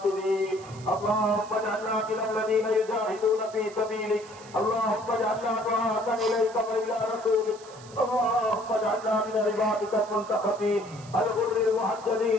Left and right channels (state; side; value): noise; right; hiss, 21 dB below the sound